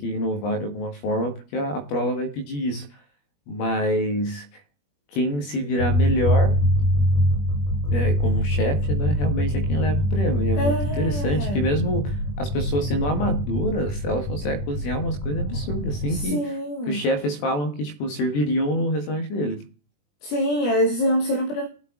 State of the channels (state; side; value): late; right; 21 ms